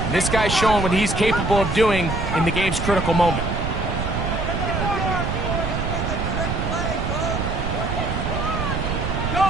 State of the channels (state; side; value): noise; right; rumble, 2 dB below the sound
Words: And this guy's showing what he's capable of doing in the game's critical moment.